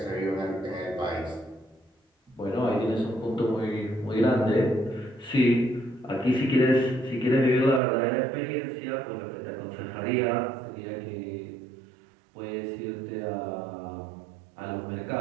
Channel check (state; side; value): drops out; left; at 7.8 s